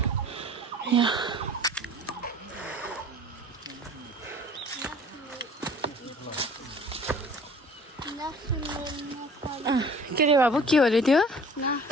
यहाँ के रे बाबु के हो अरे त्यो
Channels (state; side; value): normal; both; correlation 0.48